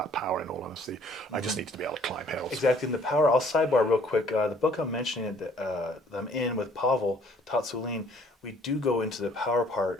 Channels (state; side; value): normal; both; correlation 0.59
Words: power, in all honesty. I just needed to be able to climb hills. Exactly. And the power, I'll sidebar real quick. The book I'm mentioning that I'm in with Pavel Tatsulin, we do go into the power